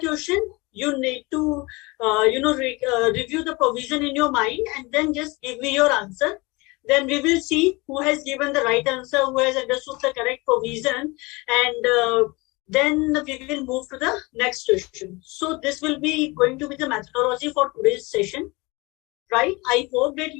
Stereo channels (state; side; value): quieter; right; 24.8 dB